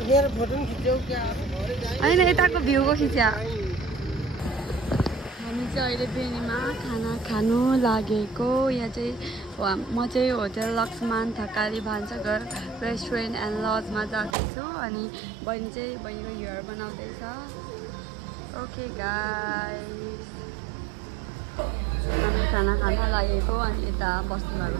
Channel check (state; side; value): drops out; left; at 14.4 s